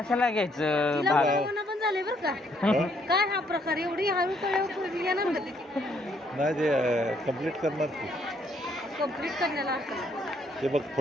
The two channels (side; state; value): both; normal; correlation 0.69